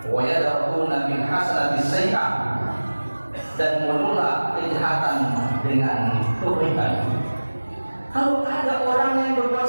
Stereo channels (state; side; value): inverted; both; correlation -1.00